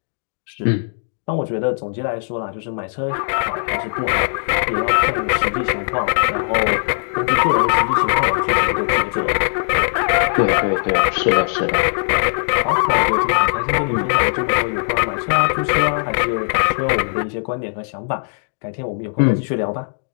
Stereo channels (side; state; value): right; silent; digital silence